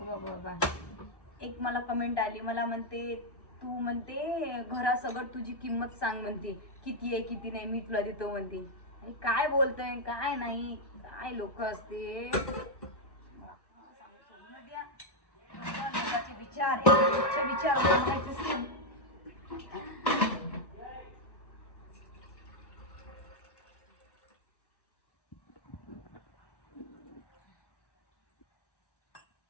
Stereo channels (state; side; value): late; right; 1.1 ms